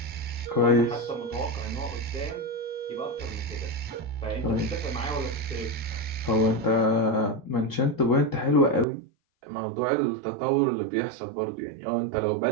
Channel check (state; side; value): drops out; left; at 8.8 s